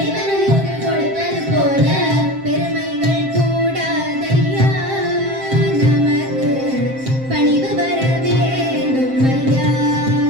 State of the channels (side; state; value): left; late; 7.6 ms